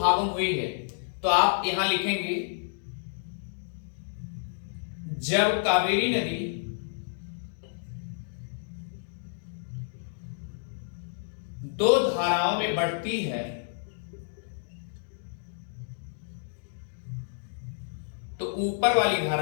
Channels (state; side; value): silent; right; digital silence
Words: में हुई है तो आप यहां लिखेंगे, जब कावेरी नदी दो धाराओं में बढ़ती है तो ऊपर वाली